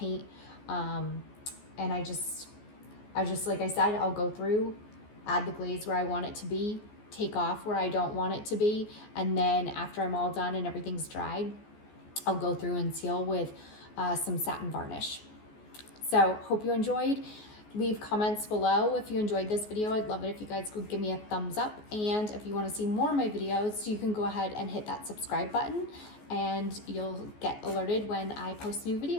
And I just, like I said, I'll go through, add the glaze where I want it to be, take off where I don't want it to be, and then after I'm all done and everything's dried, I'll go through and seal with some satin varnish. So hope you enjoyed. Leave comments below if you enjoyed this video. I'd love it if you guys would give me a thumbs up, and if you want to see more of my videos, you can go ahead and hit that subscribe button and you'll get alerted when I post new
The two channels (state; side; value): late; right; 14 ms